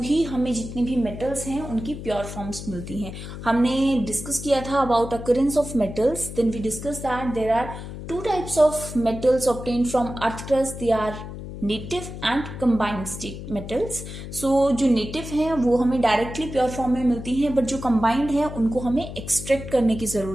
हमें जितनी भी मेटल्स हैं उनकी प्योर फॉर्म्स मिलती हैं। हमने डिस्कस किया था about occurrence of metals, then we discuss that there are two types of metals obtained from earth crust, they are native and combined state metals. So जो नेटिव हैं वो हमें डायरेक्टली प्योर फॉर्म में मिलती हैं, but जो combined है उनको हमें एक्सट्रैक्ट करने की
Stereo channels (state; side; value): noise; left; hum, 10 dB below the sound